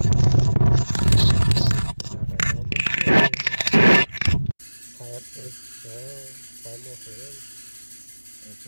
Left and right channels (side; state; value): both; inverted; correlation -1.00